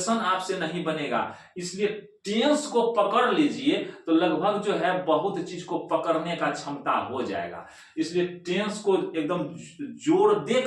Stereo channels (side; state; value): both; identical; correlation 1.00